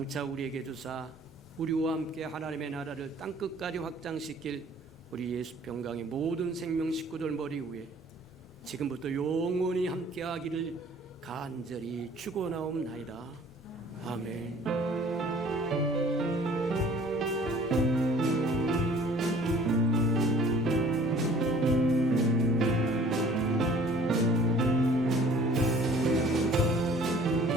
우리에게 주사 우리와 함께 하나님의 나라를 땅끝까지 확장시킬 우리 예수 평강의 모든 생명 식구들 머리 위에 지금부터 영원히 함께하기를 간절히 축원하옵나이다. 아멘.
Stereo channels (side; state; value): both; normal; correlation 0.52